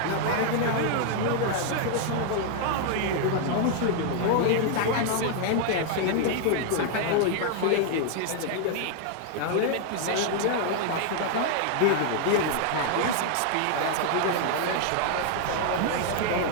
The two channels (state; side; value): different; both; correlation 0.00